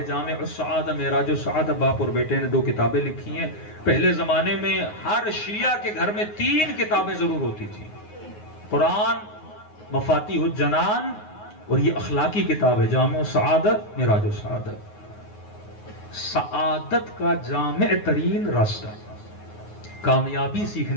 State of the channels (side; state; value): right; late; 9.6 ms